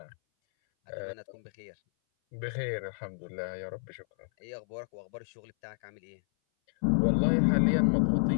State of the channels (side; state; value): right; silent; 57 dB below the other